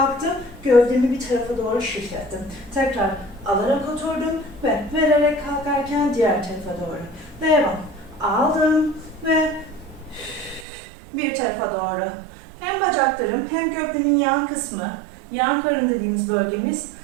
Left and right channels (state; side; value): drops out; left; at 10.7 s